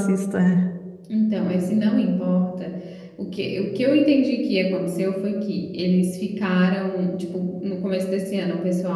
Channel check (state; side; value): identical; both; correlation 1.00